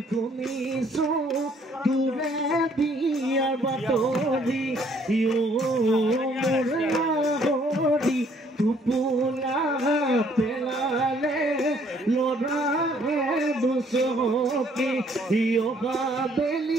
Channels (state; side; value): normal; both; correlation 0.63